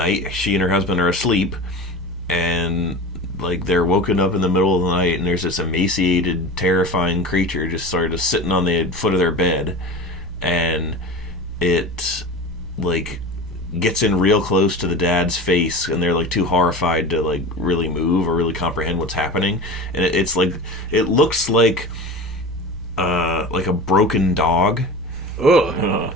she and her husband are asleep, and like they're woken up in the middle of the night and there's this emaciated, terrifying creature just sort of sitting on the foot of their bed. And it like gets in real close to the dad's face and they're like too horrified to like really move or really comprehend what's happening. And it's like, it looks like a broken dog. Ugh.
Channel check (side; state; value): both; normal; correlation 0.32